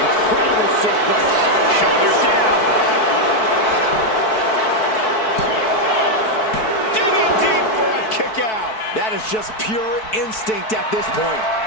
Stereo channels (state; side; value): late; right; 4.6 ms